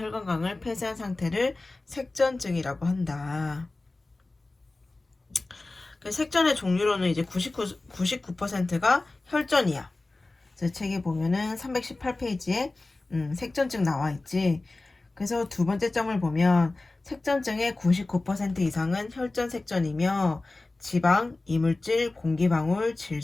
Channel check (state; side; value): quieter; right; 3.1 dB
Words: 폐쇄한 상태를 색전증이라고 한다. 색전의 종류로는 이제 99%가 혈전이야. 그래서 책에 보면은 318페이지에 색전증 나와 있지. 그래서 두 번째 점을 보면 색전증의 99% 이상은 혈전 색전이며 지방, 이물질, 공기방울,